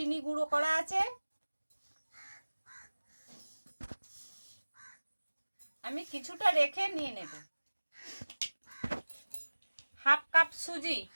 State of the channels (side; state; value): both; inverted; correlation -1.00